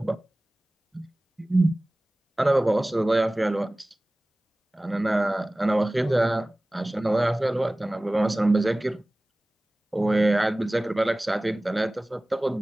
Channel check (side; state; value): both; normal; correlation 0.98